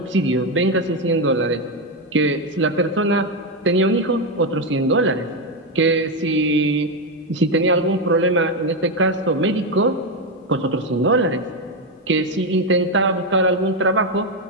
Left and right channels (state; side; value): normal; both; correlation 0.08